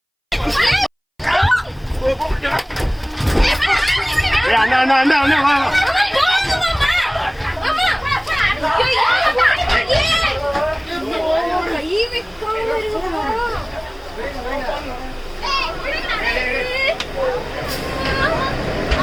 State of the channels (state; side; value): identical; both; correlation 1.00